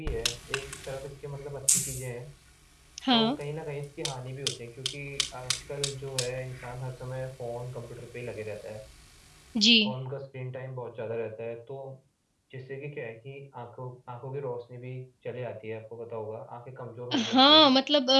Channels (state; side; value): identical; both; correlation 1.00